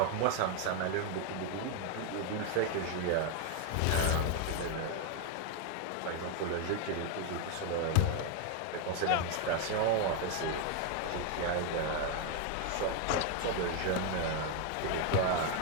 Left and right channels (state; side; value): different; both; correlation 0.01